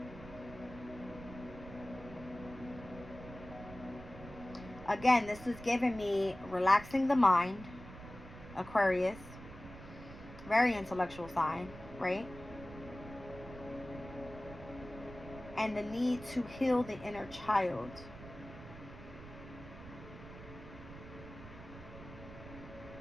Again, this is giving me relaxing the mind, Aquarius, very intellectual sign, right? And the need to heal the inner child.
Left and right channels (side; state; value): right; noise; rumble, 15 dB below the sound